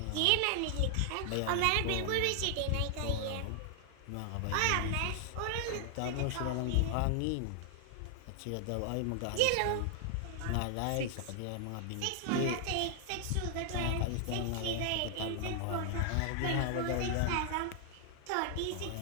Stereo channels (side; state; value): both; different; correlation 0.00